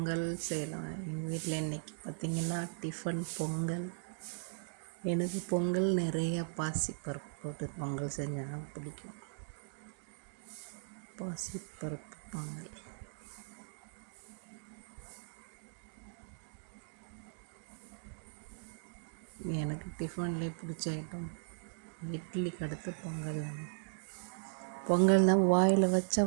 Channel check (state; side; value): silent; left; digital silence